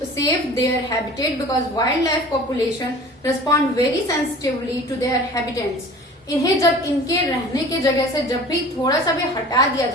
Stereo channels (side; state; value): both; normal; correlation 0.43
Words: save their habitat because wildlife population respond very sensitively to their habitats. इन्हें जब इनके रहने की जगह से जब भी थोड़ा सा भी हटा दिया